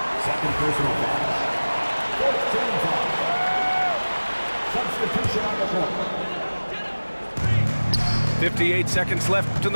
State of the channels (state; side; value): inverted; both; correlation -1.00